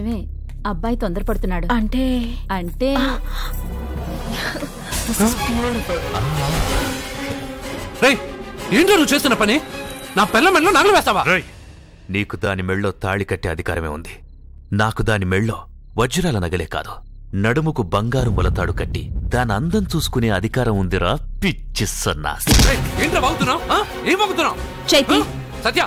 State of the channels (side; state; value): both; identical; correlation 1.00